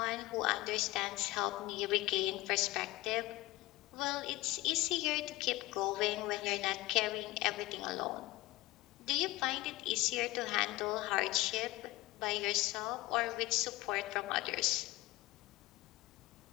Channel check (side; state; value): right; quieter; 19.3 dB